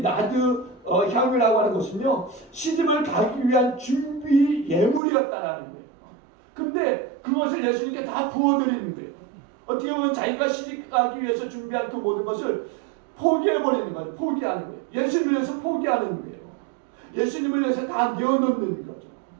향이라고 하는 것은요 시집을 가기 위한 준비 예물이었다라는 거예요. 근데 그것을 예수님께 다 부어드리는 거예요. 어떻게 보면 자기가 시집 가기 위해서 준비한 그 모든 것을 포기해버리는 거예요. 포기하는 거예요. 예수님을 위해서 포기하는 거예요. 예수님을 위해서 다 내어놓는 거죠.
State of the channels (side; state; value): left; drops out; at 5.0 s